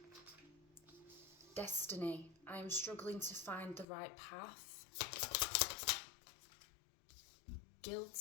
Destiny. I am struggling to find the right path.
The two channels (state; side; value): drops out; right; at 3.9 s